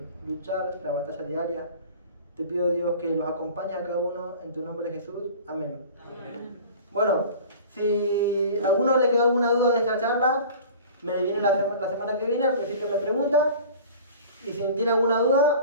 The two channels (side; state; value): both; inverted; correlation -0.41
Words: luchar la batalla diaria. Te pido, Dios, que los acompañe a cada uno en tu nombre, Jesús. Amén. Amén. Bueno, si a alguno le quedó alguna duda de esta charla, me viene la semana que viene, al principio me pregunta. Y si tiene alguna